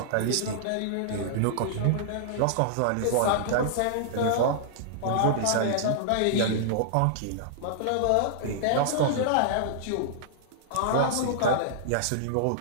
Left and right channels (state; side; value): different; both; correlation -0.02